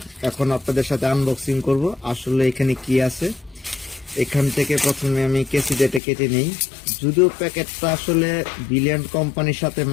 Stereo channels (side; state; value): right; drops out; at 6.0 s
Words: এখন আপনাদের সাথে আনবক্সিং করব। আসলে এখানে কি আছে, এখান থেকে প্রথমে আমি কেসিটা কেটে নিই। যদিও প্যাকেটটা আসলে ভিলিয়ান্ড কোম্পানির সাথে